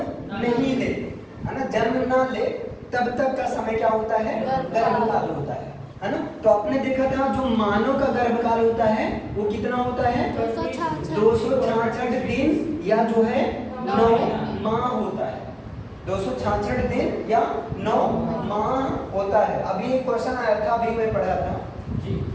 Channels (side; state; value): both; identical; correlation 1.00